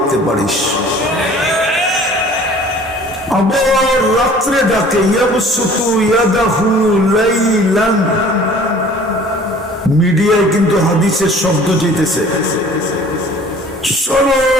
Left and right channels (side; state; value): both; normal; correlation 0.49